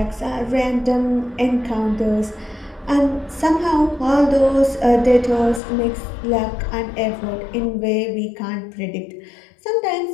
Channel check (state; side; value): drops out; right; at 5.6 s